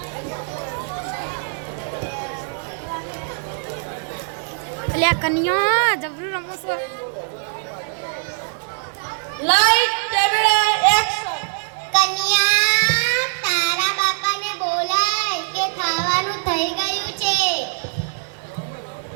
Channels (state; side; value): silent; left; digital silence